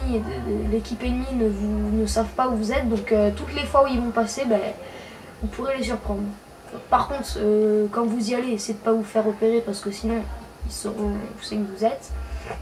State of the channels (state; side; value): identical; both; correlation 1.00